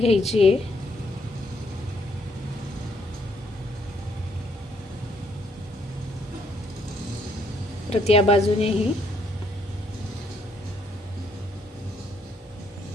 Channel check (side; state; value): both; normal; correlation 0.70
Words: आहे। परत या बाजूनेही